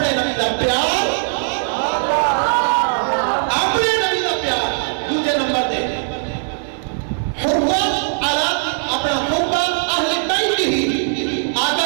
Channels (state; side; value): silent; left; 58 dB below the other